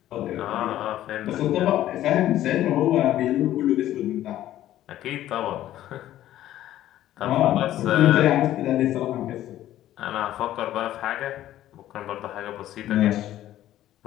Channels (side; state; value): right; quieter; 13.2 dB